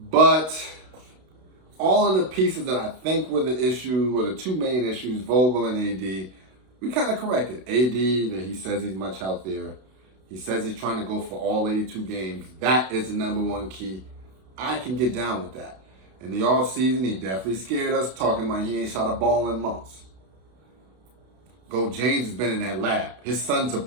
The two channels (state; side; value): late; left; 32 ms